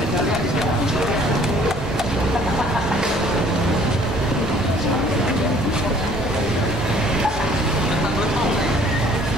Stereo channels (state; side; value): normal; both; correlation 0.56